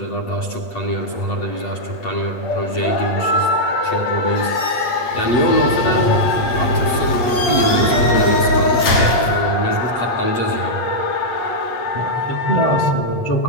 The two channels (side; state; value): right; late; 8.2 ms